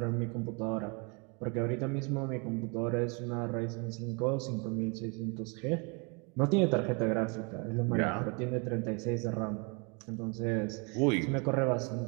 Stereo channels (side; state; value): left; quieter; 33.0 dB